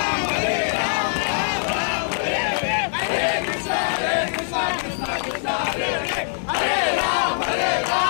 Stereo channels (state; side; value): silent; right; digital silence